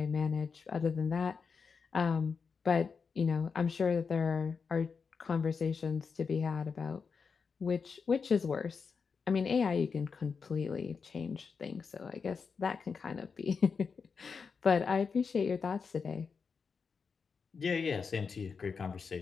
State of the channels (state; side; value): quieter; right; 5.5 dB